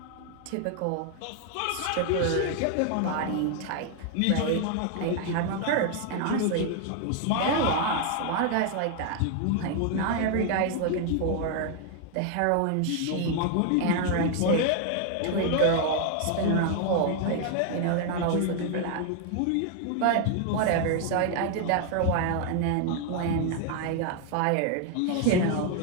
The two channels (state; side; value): different; both; correlation 0.00